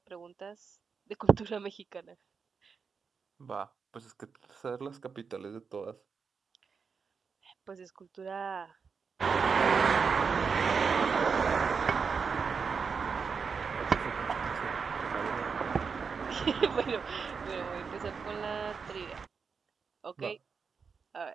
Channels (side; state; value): left; quieter; 5.6 dB